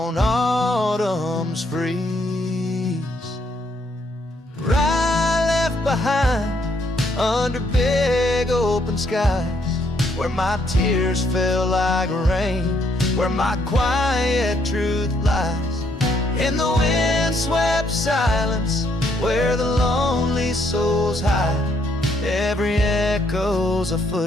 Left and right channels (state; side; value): normal; both; correlation 0.71